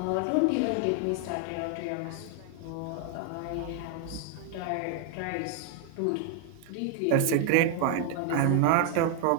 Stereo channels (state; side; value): different; both; correlation 0.00